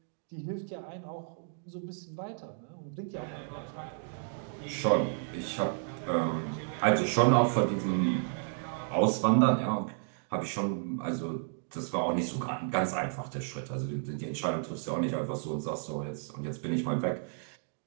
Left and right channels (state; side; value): silent; left; digital silence